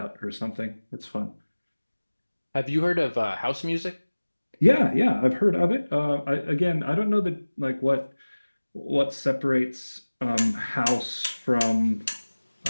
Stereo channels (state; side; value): inverted; both; correlation -1.00